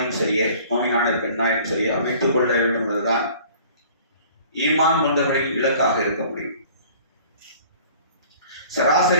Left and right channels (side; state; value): both; inverted; correlation -0.49